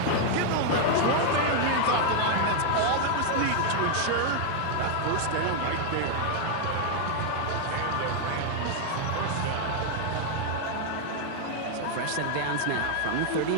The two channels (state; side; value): different; both; correlation 0.00